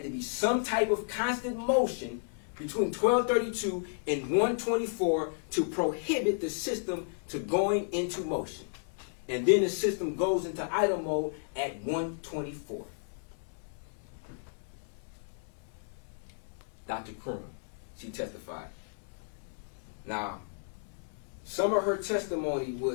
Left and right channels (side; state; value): right; silent; digital silence